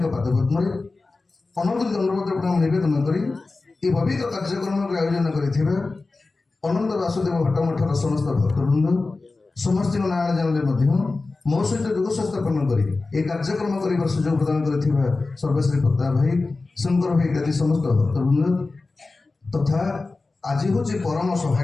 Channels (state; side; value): quieter; right; 3.6 dB